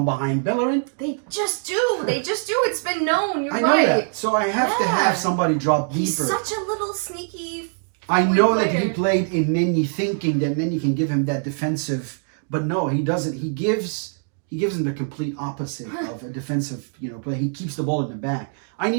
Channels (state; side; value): silent; left; 60 dB below the other